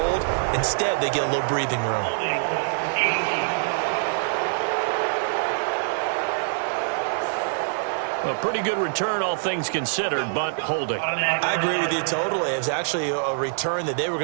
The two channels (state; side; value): silent; left; digital silence